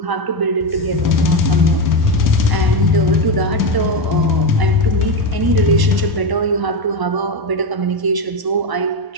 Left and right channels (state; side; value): late; left; 1.1 ms